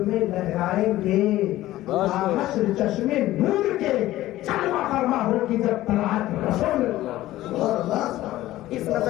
میں لہرائیں گے حشر چشمے نور کے, جلوہ فرما ہوگی جب طلعت رسول اللہ. اس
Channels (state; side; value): quieter; right; 15.5 dB